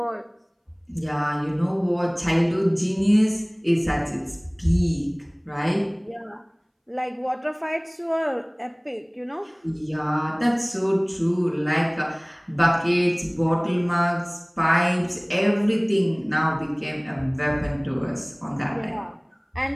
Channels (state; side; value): identical; both; correlation 1.00